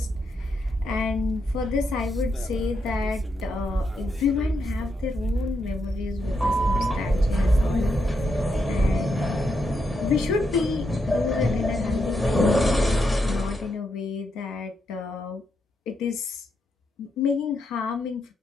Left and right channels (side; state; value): both; normal; correlation 0.81